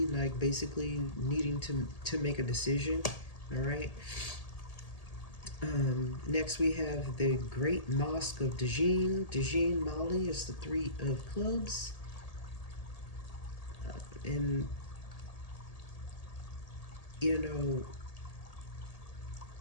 like basically needing to make a decision. All right. Next we have the Great Mosque of Dajin, Mali is the Three of Clubs. And, you know,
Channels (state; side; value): late; right; 1.8 ms